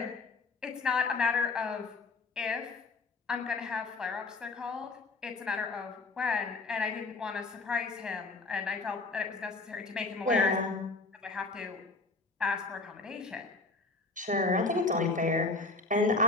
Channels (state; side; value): quieter; right; 3.6 dB